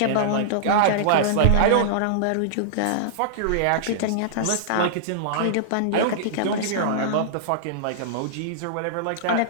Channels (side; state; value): both; different; correlation -0.02